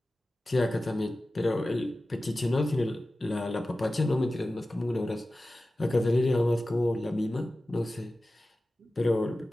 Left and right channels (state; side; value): normal; both; correlation 0.95